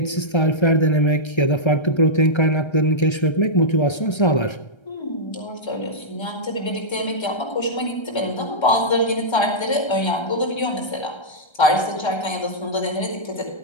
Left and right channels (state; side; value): late; right; 1.3 ms